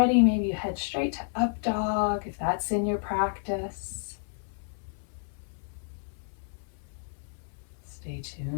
maybe you head straight to up dog if that's in your practice. Stay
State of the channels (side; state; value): right; silent; 57 dB below the other